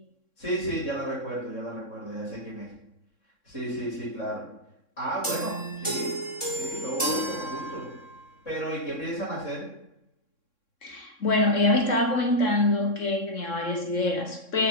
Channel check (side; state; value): right; late; 3.6 ms